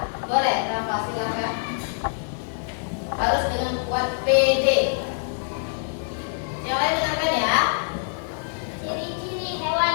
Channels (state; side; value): silent; right; digital silence